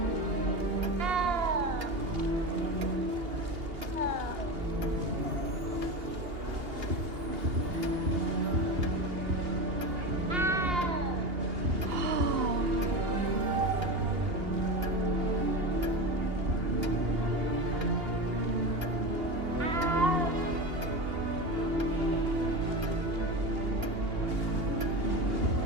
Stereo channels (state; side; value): late; left; 2.8 ms